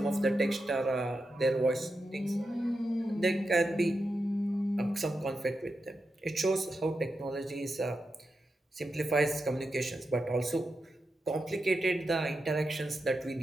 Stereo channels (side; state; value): both; normal; correlation 0.88